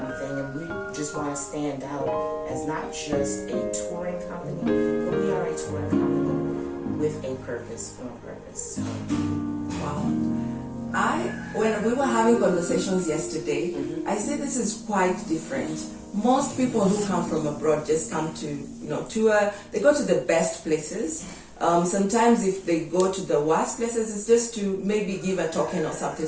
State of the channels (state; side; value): identical; both; correlation 1.00